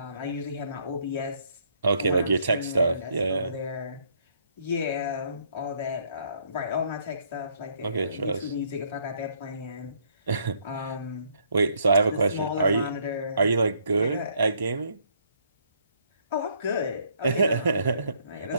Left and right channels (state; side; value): inverted; both; correlation -0.68